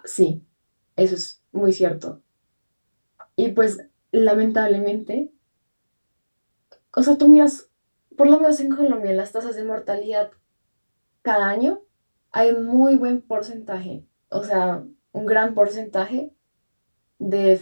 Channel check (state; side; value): inverted; both; correlation -1.00